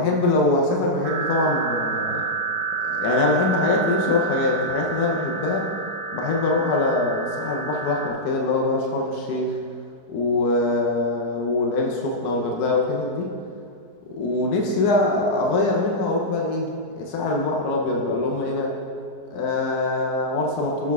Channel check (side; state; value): right; late; 4.7 ms